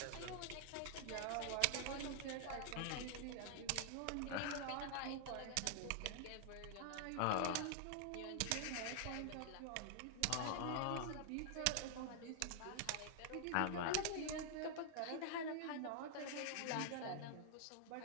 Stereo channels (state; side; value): different; both; correlation 0.00